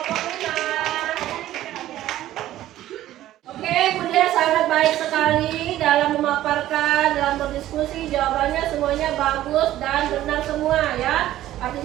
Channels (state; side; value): quieter; left; 13.9 dB